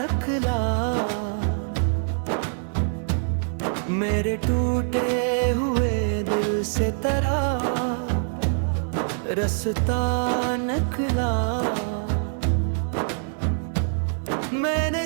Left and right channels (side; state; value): left; silent; 57 dB below the other